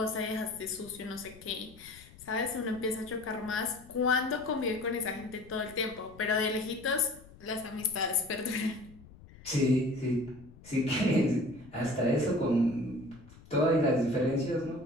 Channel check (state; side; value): noise; left; rumble, 21 dB below the sound